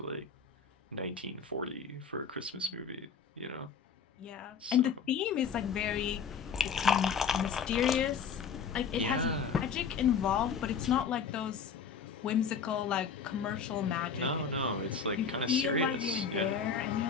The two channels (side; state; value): right; quieter; 6.3 dB